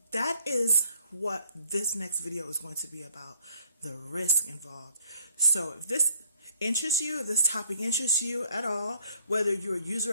that is what this next video is going to be about, the risk involved. So if this interests you, if this topic interests you at all, whether you're a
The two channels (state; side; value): inverted; both; correlation -0.63